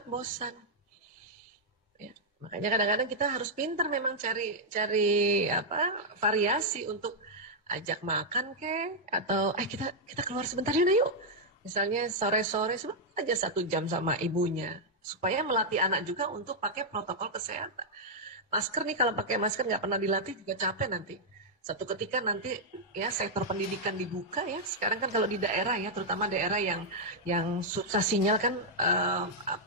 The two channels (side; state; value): both; normal; correlation -0.05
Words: bosan. Ya. Makanya kadang-kadang kita harus pintar memang cari variasi untuk ajak makan atau kita keluar sebentar yuk. Misalnya sore-sore aja 1 jam sama ibunya. supaya melatih anak juga untuk pakai protokol kesehatan. Masker nih, kalau pakai masker nggak pernah dilatih juga capek nanti. Satu ketika nanti ya sektor pendidikan dibuka ya. Sekarang kan kalau di daerah ya, terutama daerah yang susah sinyal kan